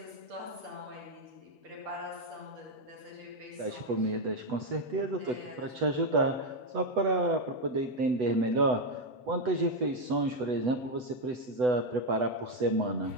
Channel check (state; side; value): late; left; 8.0 ms